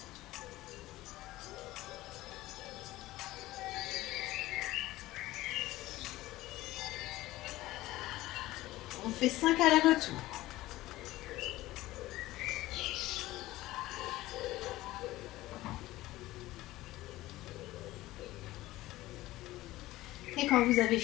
On fait 5 allers-retours. Et quand vous avez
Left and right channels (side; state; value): right; quieter; 17.1 dB